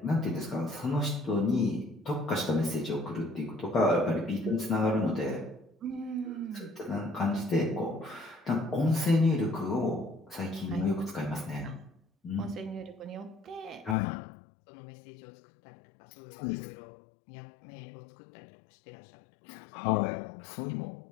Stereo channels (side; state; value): right; drops out; at 14.0 s